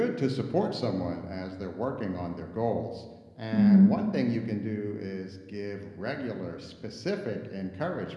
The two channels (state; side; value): identical; both; correlation 1.00